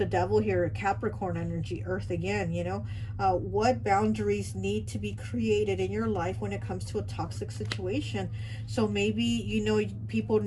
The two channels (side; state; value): both; identical; correlation 1.00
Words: devil here, Capricorn energy, earth again, you know, what boundaries need to be created in your life when it comes to a toxic situation. So maybe, you know, people